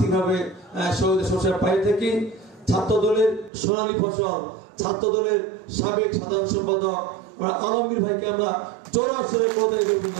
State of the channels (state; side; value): drops out; left; at 3.5 s